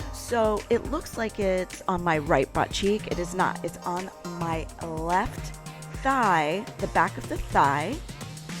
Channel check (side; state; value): both; identical; correlation 1.00